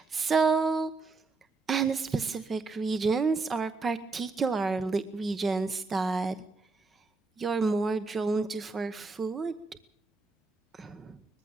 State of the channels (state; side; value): quieter; left; 3.9 dB